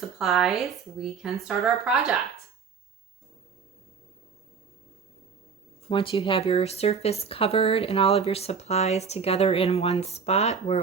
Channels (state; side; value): quieter; left; 5.8 dB